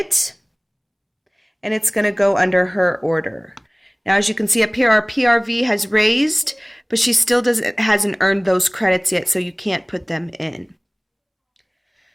and it's going to go under her order. Now, as you can see up here, our PRV has raised, but she still hasn't earned those credits yet, so you can't put them in.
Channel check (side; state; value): both; identical; correlation 1.00